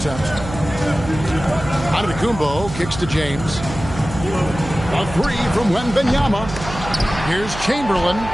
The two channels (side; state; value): right; noise; hum, 10 dB below the sound